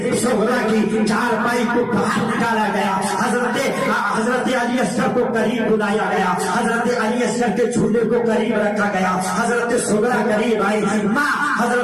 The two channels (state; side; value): identical; both; correlation 1.00